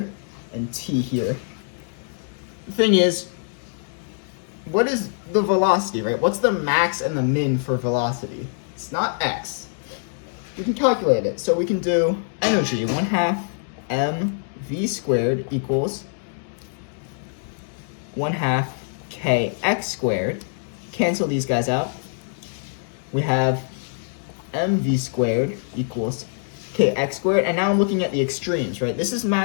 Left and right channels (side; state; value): right; silent; digital silence